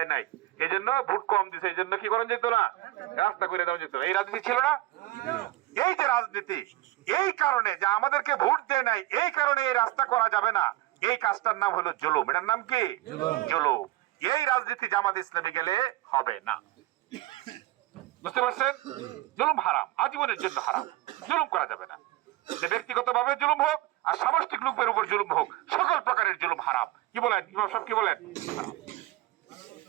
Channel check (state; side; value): quieter; left; 17.7 dB